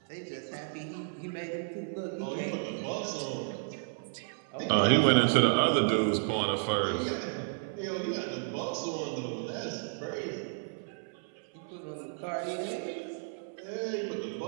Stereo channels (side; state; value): left; silent; 56 dB below the other